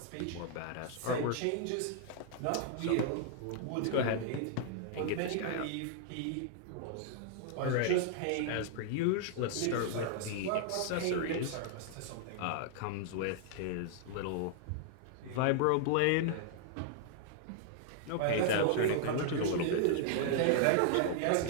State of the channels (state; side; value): different; both; correlation 0.00